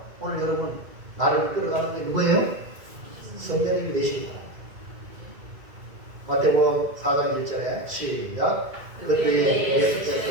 오늘 여러분 나를 이끌어가는 게 누구예요? 성령님이 되시기 바랍니다. 마태복음 4장 1절에 시작. 그때에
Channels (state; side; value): late; left; 2.1 ms